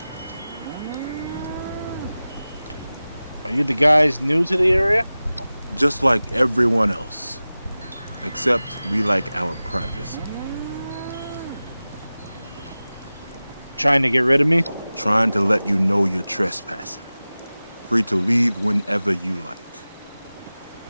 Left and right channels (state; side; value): inverted; both; correlation -0.97